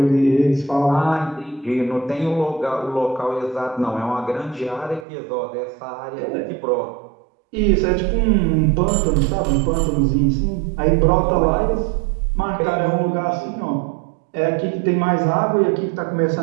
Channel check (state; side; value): drops out; left; at 5.1 s